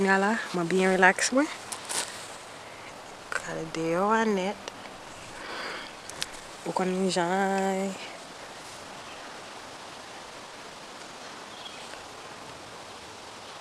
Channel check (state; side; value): identical; both; correlation 1.00